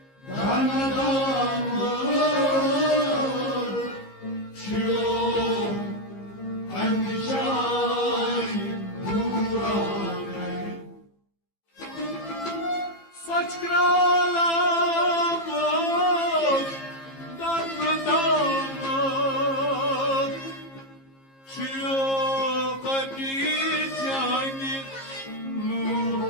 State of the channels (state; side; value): late; right; 15 ms